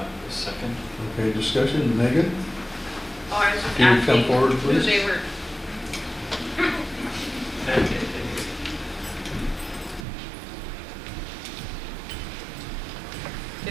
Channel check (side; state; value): left; drops out; at 10.1 s